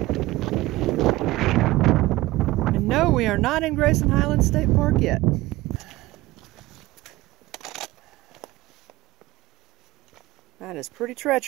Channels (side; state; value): left; quieter; 18.6 dB